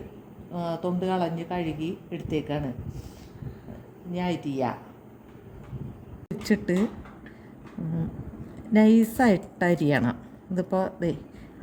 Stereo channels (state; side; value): identical; both; correlation 1.00